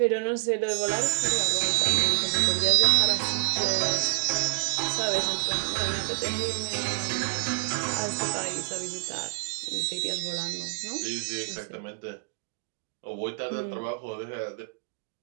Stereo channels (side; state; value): left; silent; digital silence